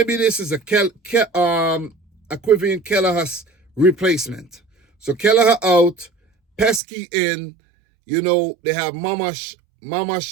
this is a Quivin Keller has replacement. So Kelleher out, Pesky in, they have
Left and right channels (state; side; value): drops out; left; at 6.8 s